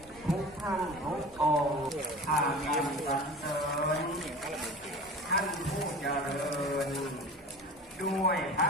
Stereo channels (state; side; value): normal; both; correlation 0.37